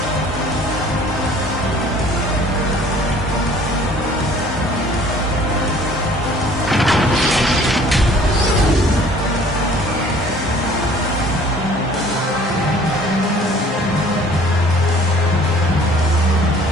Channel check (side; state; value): both; normal; correlation 0.53